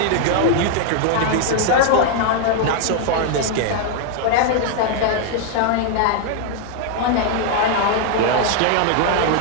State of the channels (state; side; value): different; both; correlation 0.00